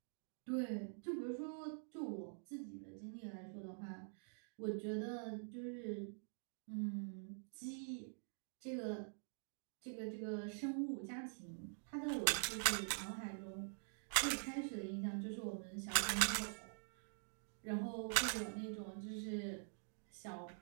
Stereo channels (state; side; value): silent; left; digital silence